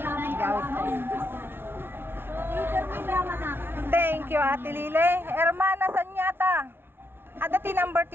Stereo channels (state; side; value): late; left; 0.11 ms